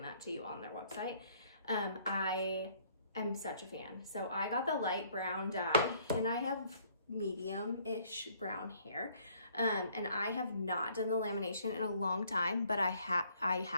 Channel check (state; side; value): inverted; both; correlation -0.62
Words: that to you on their website. I am such a fan. So I got the light brown dye, and I have medium-ish brown hair. And I have not done the lamination in a long time, but I